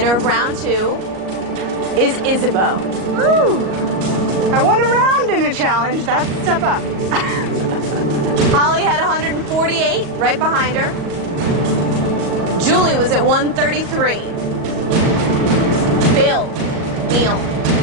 of round 2 is Isabeau. Woo! I won a round in a challenge. That's a step up. Holly had 148, right behind her. Julie was at 133. Bill, Neil,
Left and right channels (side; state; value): left; late; 38 ms